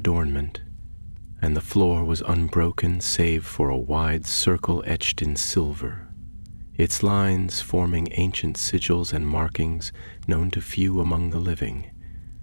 and the floor was unbroken save for a wide circle etched in silver, its lines forming ancient sigils and markings known to few among the living.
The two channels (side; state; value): both; inverted; correlation -1.00